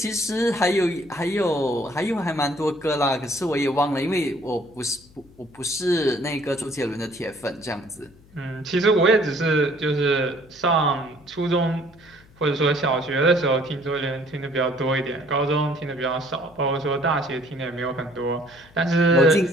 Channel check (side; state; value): left; noise; hum, 26 dB below the sound